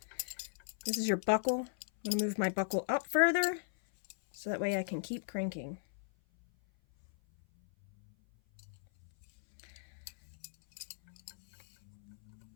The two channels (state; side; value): silent; right; 53 dB below the other